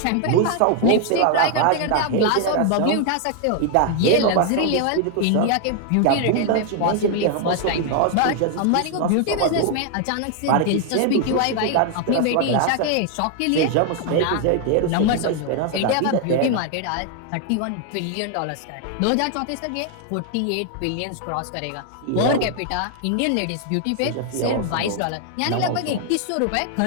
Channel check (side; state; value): both; different; correlation 0.00